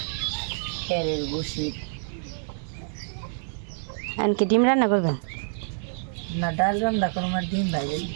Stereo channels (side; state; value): left; silent; 60 dB below the other